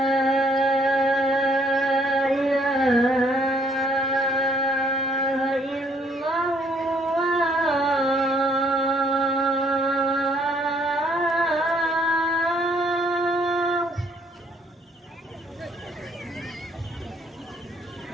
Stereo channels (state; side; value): normal; both; correlation 0.64